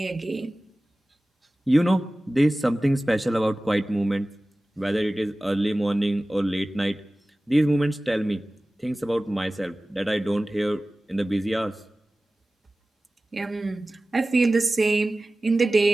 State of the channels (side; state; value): both; normal; correlation 0.97